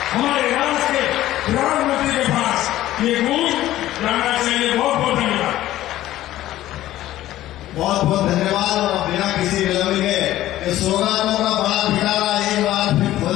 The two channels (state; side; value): quieter; right; 14.4 dB